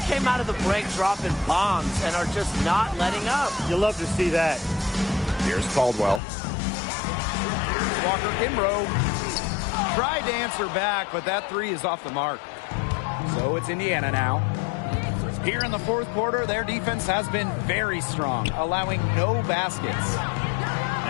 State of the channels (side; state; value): right; drops out; at 6.2 s